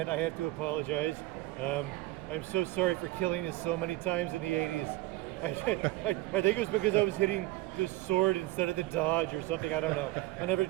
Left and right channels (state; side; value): quieter; left; 17.9 dB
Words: I have to apologize. I'm so sorry for killing you so many times in the 80s. I think it was because I was hitting the sword instead of the dodge or something. I don't know. I never